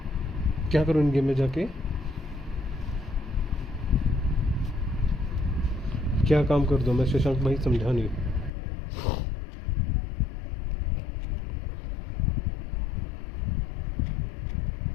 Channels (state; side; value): drops out; right; at 8.5 s